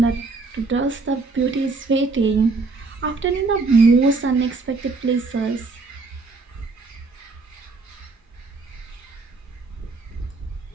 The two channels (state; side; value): quieter; left; 3.9 dB